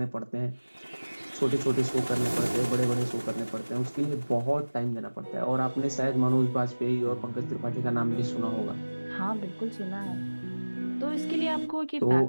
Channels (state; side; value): inverted; both; correlation -1.00